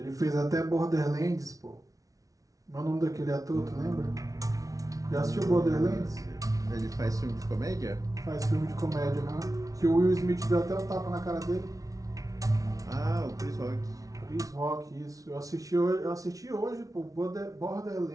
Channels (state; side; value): late; left; 0.17 ms